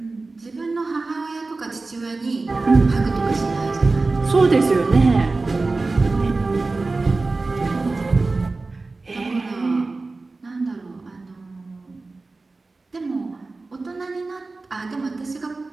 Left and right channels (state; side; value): quieter; left; 3.5 dB